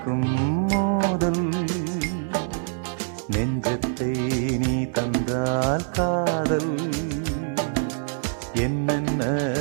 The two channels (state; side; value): silent; left; digital silence